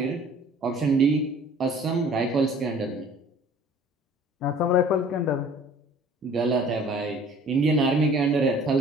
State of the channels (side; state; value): both; normal; correlation 0.50